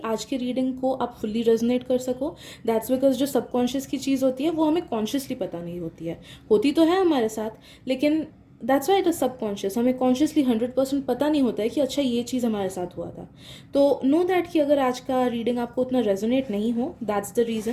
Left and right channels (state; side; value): identical; both; correlation 1.00